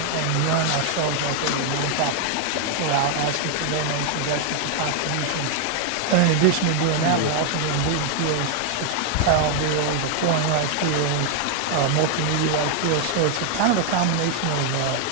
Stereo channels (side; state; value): both; different; correlation 0.00